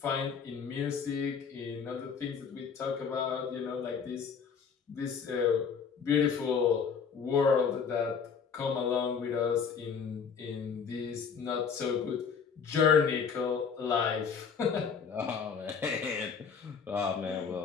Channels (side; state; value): right; quieter; 6.3 dB